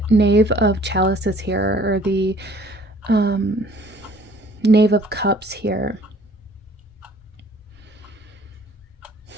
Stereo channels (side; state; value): both; normal; correlation 0.55